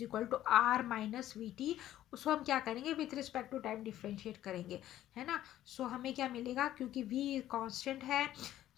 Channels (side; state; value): right; quieter; 13.0 dB